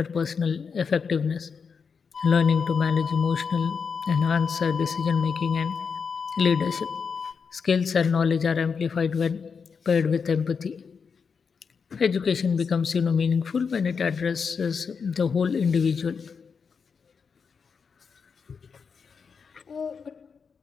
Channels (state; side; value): quieter; right; 5.8 dB